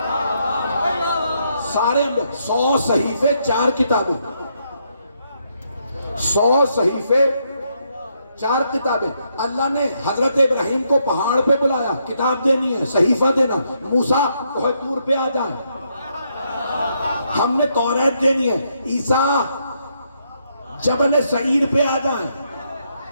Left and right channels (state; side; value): inverted; both; correlation -0.76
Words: سارے 100 صحیفے 4 کتابیں، 100 صحیفے 4 کتابیں. اللہ نے حضرت ابراہیم کو پہاڑ پہ بلایا، کتاب دینی ہے، صحیفہ دینا. موسیٰ کوہ طور پہ آ جائیں، ہم نے توریت دینی ہے. عیسیٰ جبل سعیر پہ آ جائیں،